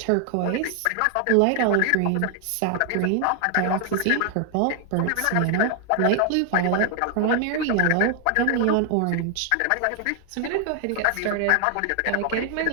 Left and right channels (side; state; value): both; different; correlation 0.00